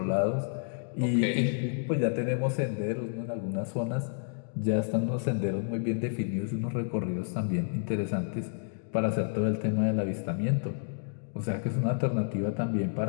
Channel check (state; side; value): silent; right; digital silence